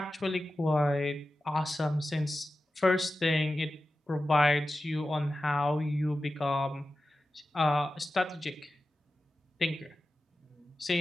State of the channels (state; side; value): normal; both; correlation 0.93